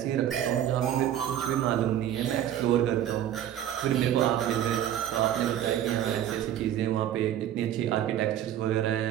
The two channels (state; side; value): quieter; left; 11.0 dB